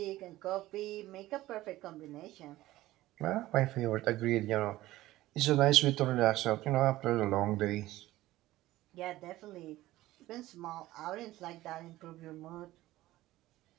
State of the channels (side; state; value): left; quieter; 16.5 dB